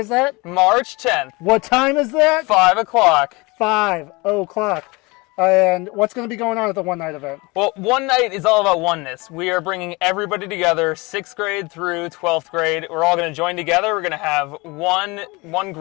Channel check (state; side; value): quieter; right; 25.2 dB